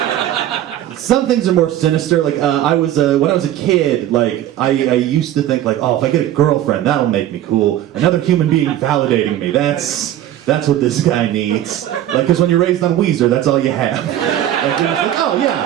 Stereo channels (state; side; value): quieter; left; 12.3 dB